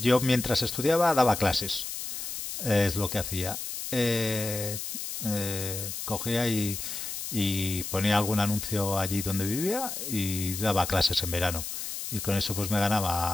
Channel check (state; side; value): noise; left; hiss, 6 dB below the sound